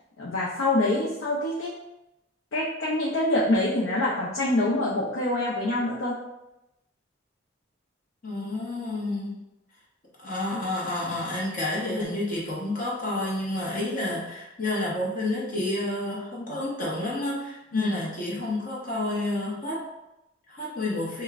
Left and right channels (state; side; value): normal; both; correlation 0.35